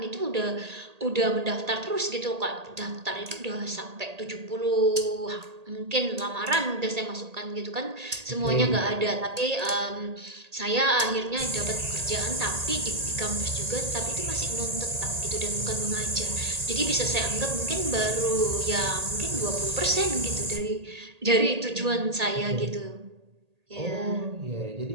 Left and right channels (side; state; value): left; late; 1.8 ms